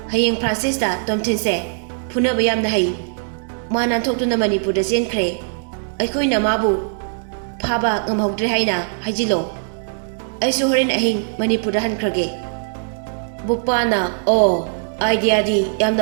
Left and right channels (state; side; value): silent; left; digital silence